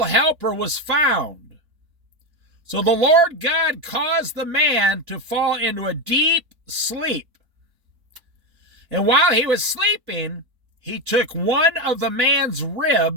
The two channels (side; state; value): left; late; 3.9 ms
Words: helper was found. So the Lord God caused the man to fall into a deep sleep. And while he was sleeping, he took one of the man's